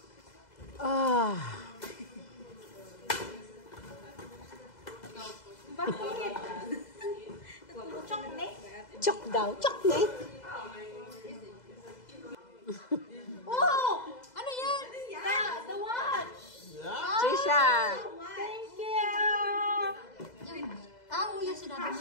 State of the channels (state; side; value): late; right; 2.0 ms